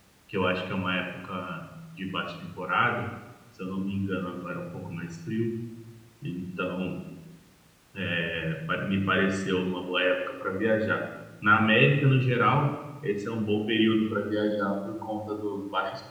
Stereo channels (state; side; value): identical; both; correlation 1.00